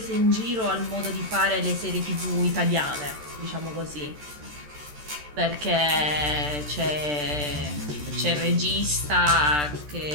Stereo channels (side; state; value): left; late; 14 ms